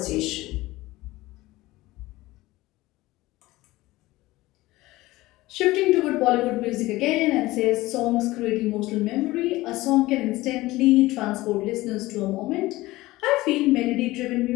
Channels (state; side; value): quieter; right; 18.6 dB